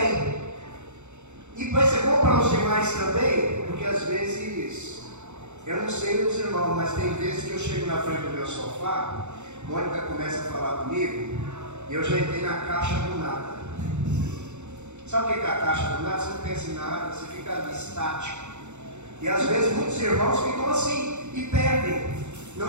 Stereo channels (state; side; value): late; left; 0.83 ms